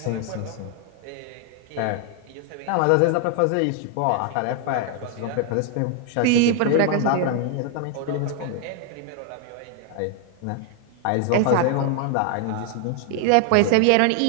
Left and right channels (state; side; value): different; both; correlation 0.00